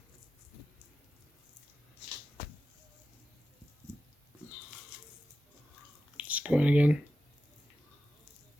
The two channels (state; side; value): normal; both; correlation 0.92